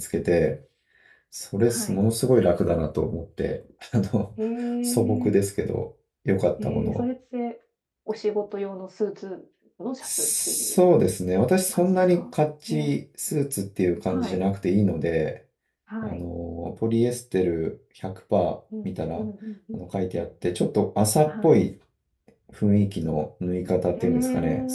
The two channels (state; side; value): identical; both; correlation 1.00